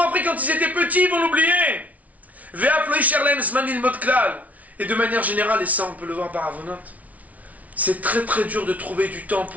appris quand ils étaient petits, ils vont l'oublier. Et de manière générale, et ça on peut le voir par Avonot, c'est très très dur de trouver du temps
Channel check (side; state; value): left; late; 0.070 ms